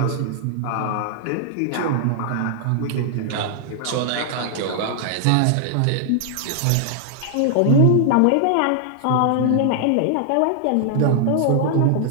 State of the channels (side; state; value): both; different; correlation -0.01